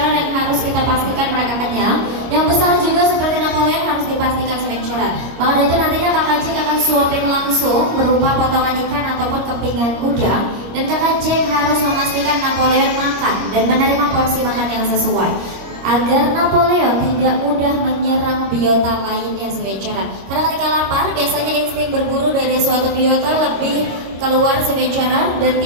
yang harus kita pastikan mereka kenyang, yang besar juga seperti Napoleon harus dipastikan Sea Ventura. Maka dari itu nantinya Kakak Jack akan suapin langsung berupa potongan ikan ataupun kepingan udang, dan Kakak Jack harus memastikan Napoleon makan dan menerima porsi makan yang sesuai agar Napoleon tidak mudah menyerang biota lainnya Sea Ventura. Karena ketika lapar biasanya insting berburu dari suatu biota lebih keluar Sea Ventura dan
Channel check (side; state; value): left; late; 25 ms